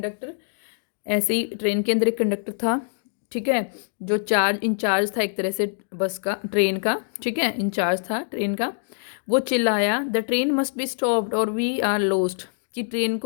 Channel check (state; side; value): silent; right; digital silence